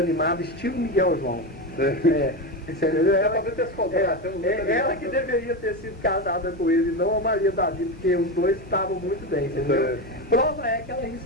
estilo Miguel João. Você entendeu? Ela que deveria ter sido casada com ele, não a Maria Davi, porque os dois estavam muito bem, entendeu? Prova é que ela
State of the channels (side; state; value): both; normal; correlation 0.17